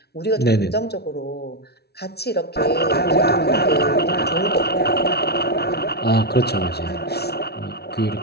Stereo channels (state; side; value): late; right; 0.47 ms